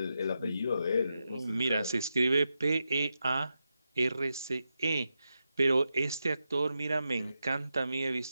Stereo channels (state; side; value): inverted; both; correlation -0.88